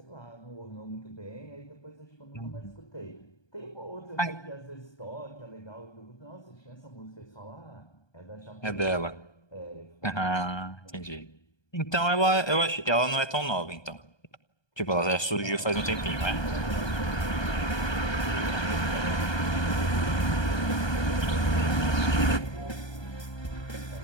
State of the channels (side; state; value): right; late; 1.2 ms